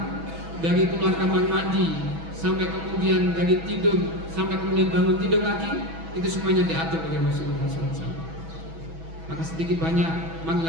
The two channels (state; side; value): late; left; 6.1 ms